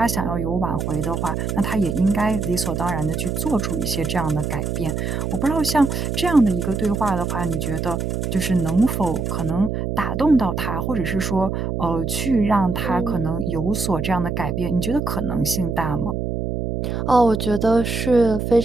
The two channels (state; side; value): noise; right; hum, 2 dB below the sound